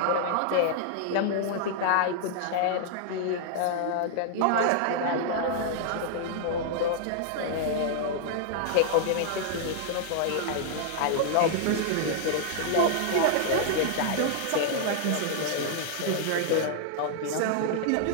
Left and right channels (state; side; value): different; both; correlation -0.01